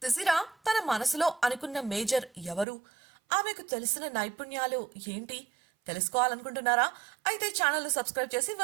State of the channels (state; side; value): drops out; left; at 2.7 s